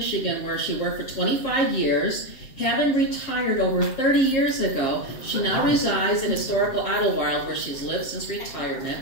where she worked for 25 years. Having retired over 30 years ago, she now resides in historical Idlewild, where she's lived since retirement.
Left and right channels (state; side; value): late; right; 7.4 ms